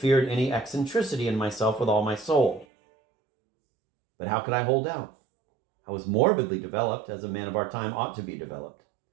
any eccentricity in myself with all my soul. But how could I hold out? I was morbidly developed, as a man of our time ought to be developed.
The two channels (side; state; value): left; drops out; at 2.7 s